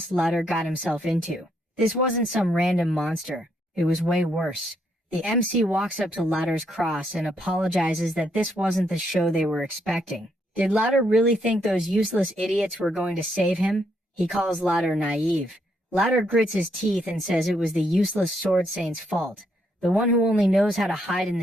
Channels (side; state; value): both; normal; correlation 0.75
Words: Lutter got himself into. This wasn't some random monster, it was way worse. The MC walks up to Lutter's cross and apologizes that this wasn't the show they were expecting. Did Lutter really think those useless idiots were going to save him? He calls Lutter naive. Lutter grits his teeth and says it was the useless sword saint's fault, the one who only knows how to hide in